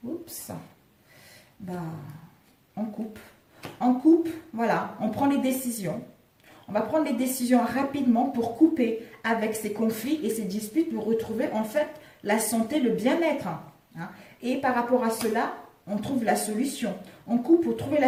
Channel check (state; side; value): identical; both; correlation 1.00